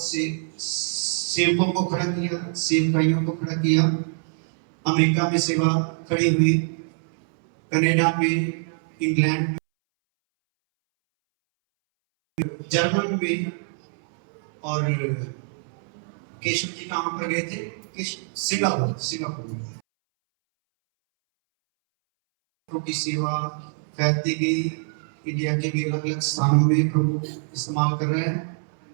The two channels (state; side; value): silent; left; 62 dB below the other